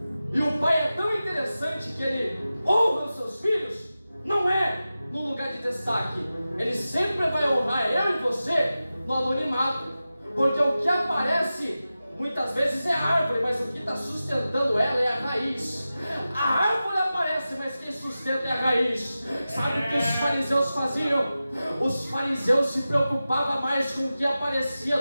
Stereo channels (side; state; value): both; inverted; correlation -0.94